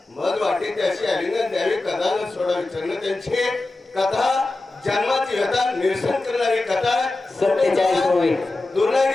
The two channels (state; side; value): quieter; right; 3.0 dB